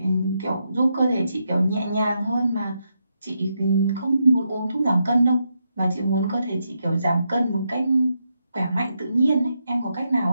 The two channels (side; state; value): both; inverted; correlation -0.83